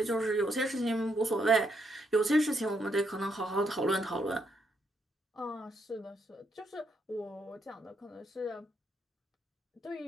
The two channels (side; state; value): both; normal; correlation 0.77